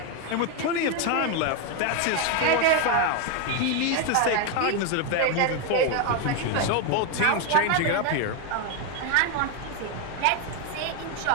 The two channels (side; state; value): both; different; correlation 0.02